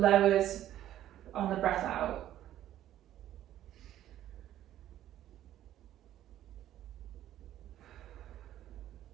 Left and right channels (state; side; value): quieter; left; 12.4 dB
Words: lowers on the breath out.